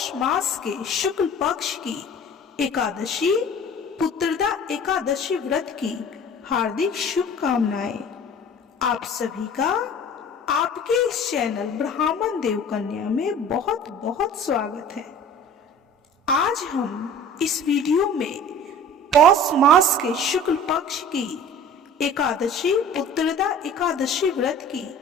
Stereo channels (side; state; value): both; normal; correlation 0.43